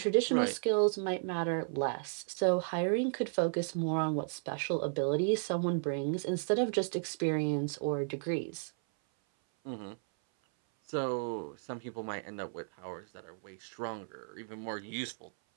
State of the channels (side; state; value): left; silent; 55 dB below the other